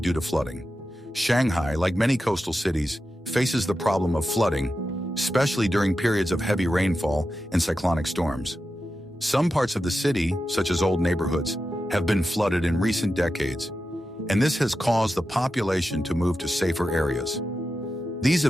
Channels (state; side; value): normal; both; correlation 0.90